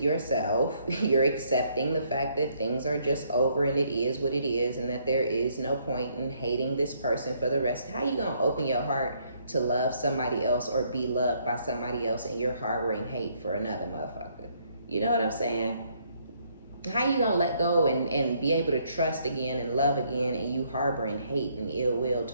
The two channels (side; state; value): both; inverted; correlation -0.69